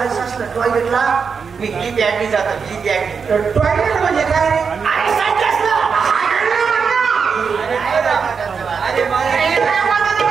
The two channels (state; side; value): quieter; left; 5.8 dB